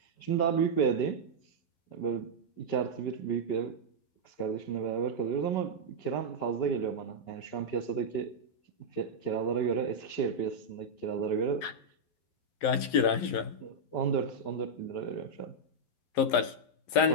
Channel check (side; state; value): right; late; 11 ms